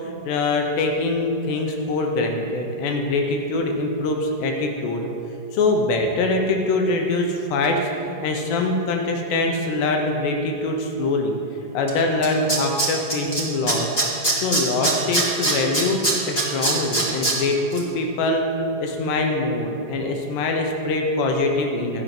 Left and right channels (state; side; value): late; right; 4.8 ms